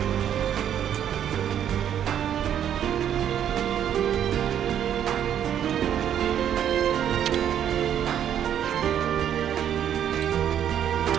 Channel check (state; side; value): quieter; left; 9.8 dB